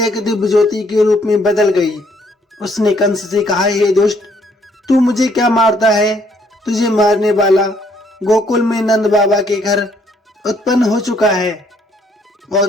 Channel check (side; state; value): both; normal; correlation 0.67